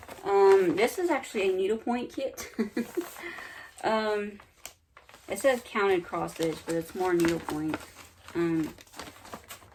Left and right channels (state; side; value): identical; both; correlation 1.00